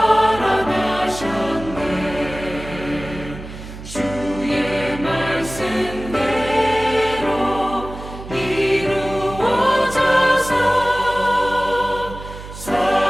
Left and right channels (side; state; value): right; noise; hum, 13 dB below the sound